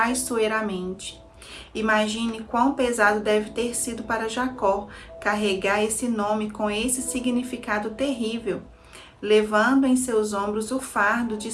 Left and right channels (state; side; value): identical; both; correlation 1.00